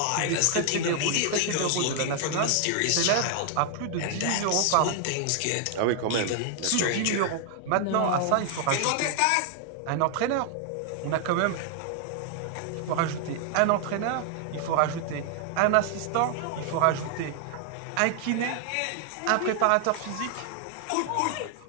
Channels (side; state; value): both; different; correlation 0.00